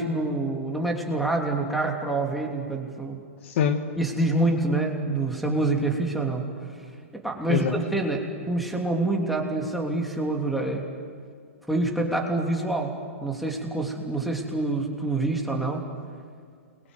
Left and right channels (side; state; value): both; normal; correlation 0.36